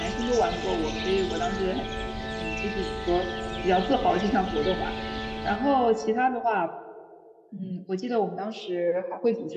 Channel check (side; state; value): both; identical; correlation 1.00